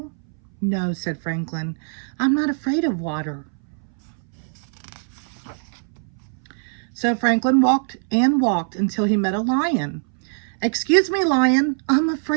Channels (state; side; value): silent; left; 61 dB below the other